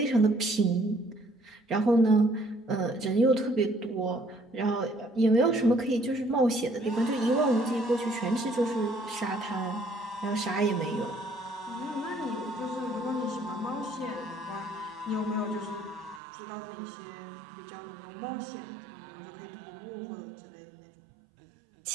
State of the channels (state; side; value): drops out; left; at 16.2 s